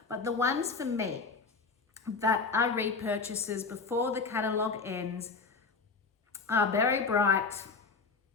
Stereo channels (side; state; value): right; quieter; 4.6 dB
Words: But the ones for me that are repurchases before the catalogue ends are Berry Bright,